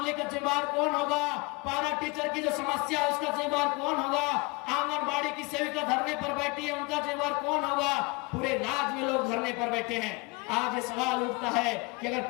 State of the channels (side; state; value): right; quieter; 27.5 dB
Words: का जिम्मेदार कौन होगा? पारा टीचर की जो समस्या है उसका जिम्मेदार कौन होगा? आंगनबाड़ी की सेविका धरने पर बैठी है, उनका जिम्मेदार कौन होगा? पूरे राज्य में लोग धरने पर बैठे हैं। आज ये सवाल उठता है कि अगर